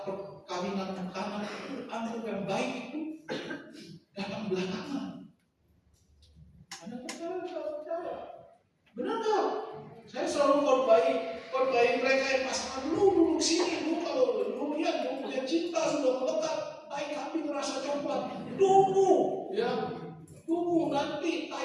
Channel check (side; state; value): both; identical; correlation 1.00